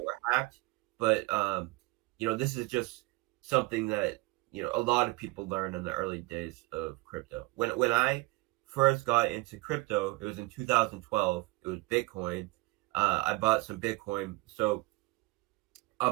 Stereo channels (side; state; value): left; quieter; 23.0 dB